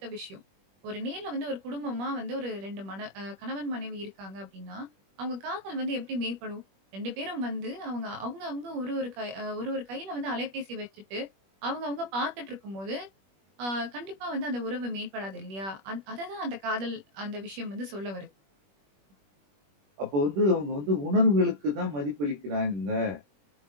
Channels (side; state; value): left; late; 21 ms